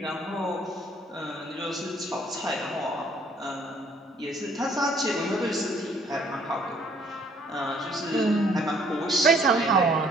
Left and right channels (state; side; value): normal; both; correlation 0.61